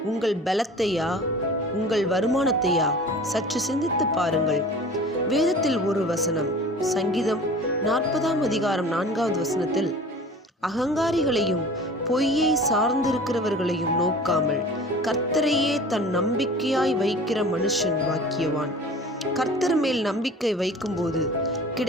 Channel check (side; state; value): both; normal; correlation 0.42